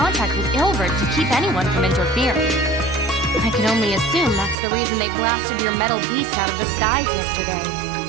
with Ilvard to keep anyone from interfering. I can only assume that's the reason they blasted your metal beast out of the skies yesterday.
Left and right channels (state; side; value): drops out; left; at 4.5 s